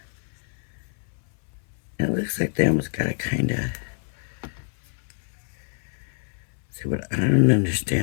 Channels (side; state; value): right; silent; 58 dB below the other